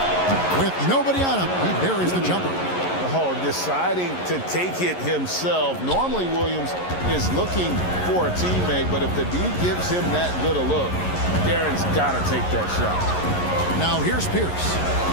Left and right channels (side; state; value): right; late; 11 ms